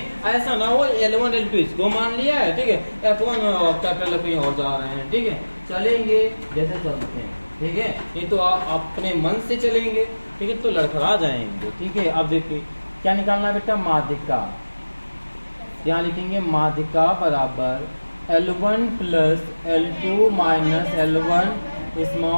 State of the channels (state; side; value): inverted; both; correlation -1.00